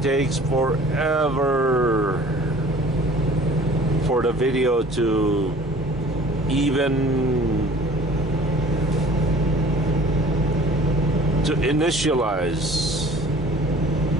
takes forever for the video to even to initialize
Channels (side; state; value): both; normal; correlation 0.49